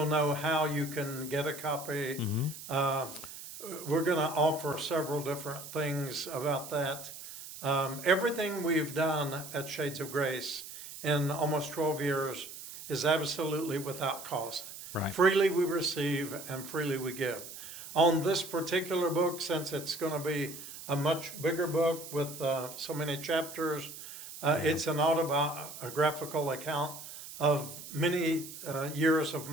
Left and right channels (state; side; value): noise; right; hiss, 12 dB below the sound